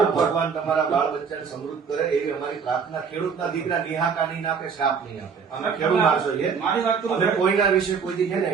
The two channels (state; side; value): quieter; left; 6.2 dB